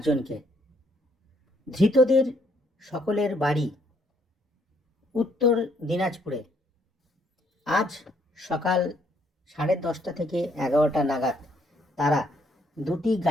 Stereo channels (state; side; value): normal; both; correlation 0.69